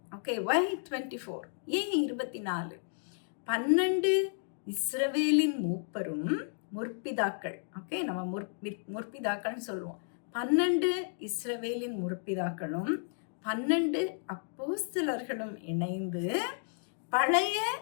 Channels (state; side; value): silent; right; digital silence